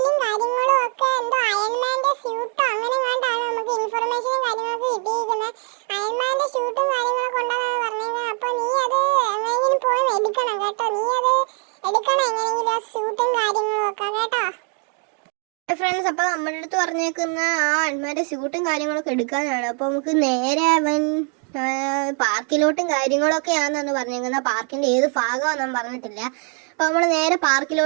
കാര്യങ്ങളും ഒക്കെ എന്തോ അയൺമാന്റെ സ്യൂട്ടോ അങ്ങനെ കണ്ടാണ് നമുക്ക് ഇൻഫർമേഷനും കാര്യങ്ങളൊക്കെ കിട്ടിയിരിക്കുന്നത്. അയൺമാന്റെ സ്യൂട്ടും കാര്യങ്ങളൊക്കെ ഉണ്ടെന്നാണ് പറഞ്ഞത്. അപ്പോൾ നീ അത് എങ്ങനെയെങ്കിലും പോയി എടുക്കണം കേട്ടോ. നീ അത് എടുക്കണം എങ്ങനെയെങ്കിലും, ആ സ്യൂട്ടും കാര്യങ്ങളും ഒക്കെ കേട്ടോ. ഫ്രണ്ട്സ്, അപ്പോൾ നമ്മുടെ അടുത്ത് പറഞ്ഞേക്കുന്ന ആ അയൺമാന്റെ സ്യൂട്ടും കാര്യങ്ങളൊക്കെ എടുക്കാനാണ്. അപ്പോൾ നമുക്ക് നേരെ അവൻ പാർക്കിലോട്ടും കാര്യങ്ങളൊക്കെയാണെന്നാണ് പറഞ്ഞേക്കുന്നത്. പാർക്കിൻ്റെ ഏത് ഭാഗമാണെന്നും പറഞ്ഞിട്ടില്ല. അപ്പോൾ നമ്മൾ നേരെ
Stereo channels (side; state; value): left; quieter; 39.4 dB